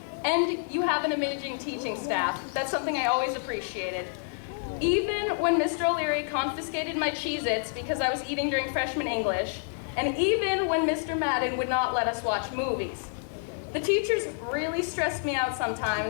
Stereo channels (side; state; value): right; silent; 56 dB below the other